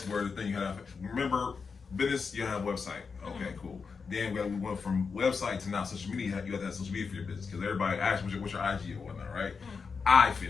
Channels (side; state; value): right; quieter; 5.3 dB